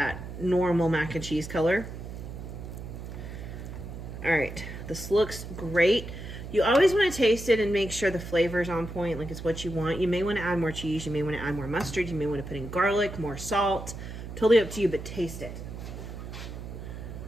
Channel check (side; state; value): right; noise; hum, 10 dB below the sound